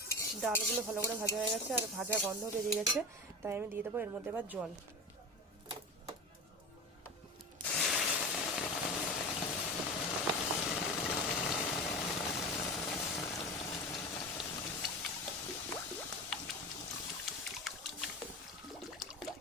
ডালগুলো ভালো করে ভাজা হয়ে গেছে আর ভাজা গন্ধ বেরিয়ে গেছে, তাই আমি দিয়ে দেবো এর মধ্যে এবার জল।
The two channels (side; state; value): both; normal; correlation 0.27